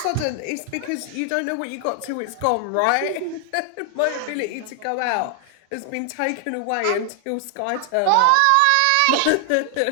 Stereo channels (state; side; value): different; both; correlation 0.00